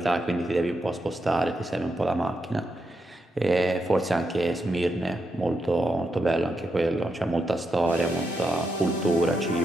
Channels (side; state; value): both; normal; correlation 0.84